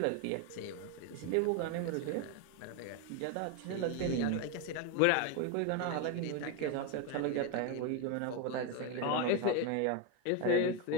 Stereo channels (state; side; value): different; both; correlation 0.02